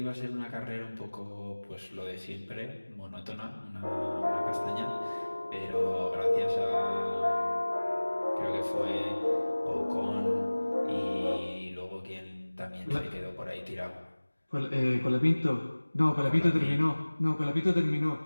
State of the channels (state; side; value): inverted; both; correlation -1.00